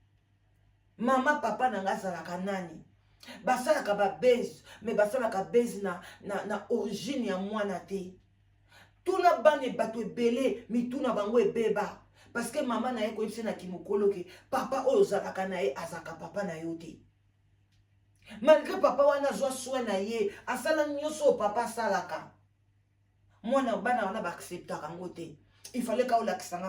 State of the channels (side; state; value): both; identical; correlation 1.00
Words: Mama papa nanga zalaka nani. Basalaka ba base, mais basalaka base na origine ya mwana te. Tuna bane bato ebele, mi tuna bango ebeba. Parce que maman na ye koyebisa na kimokolo ke papa oyo ozalaka na ye azaka papa na yo te. Malgré papa wana zwa soin na ye, asala nyonso papa salaka. Mwana bana wana ba acceptaka ngo te. Il fallait ka